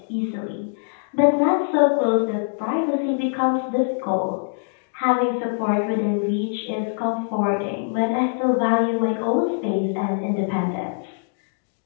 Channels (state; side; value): silent; right; digital silence